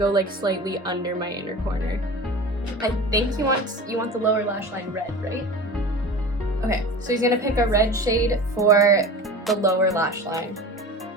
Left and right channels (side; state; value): both; normal; correlation 0.35